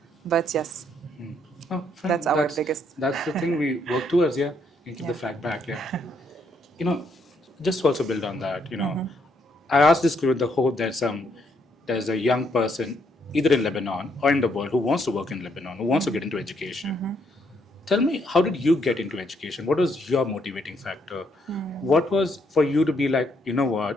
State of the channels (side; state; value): both; normal; correlation 0.73